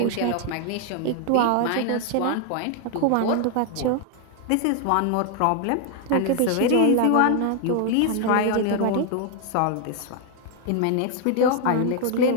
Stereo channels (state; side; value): different; both; correlation 0.00